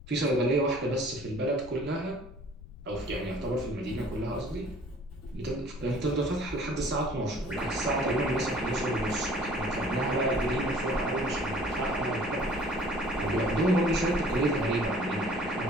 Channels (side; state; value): left; noise; rumble, 16 dB below the sound